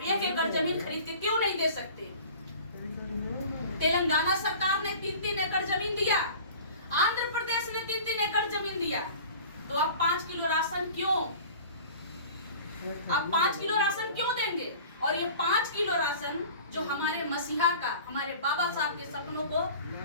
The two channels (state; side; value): inverted; both; correlation -0.43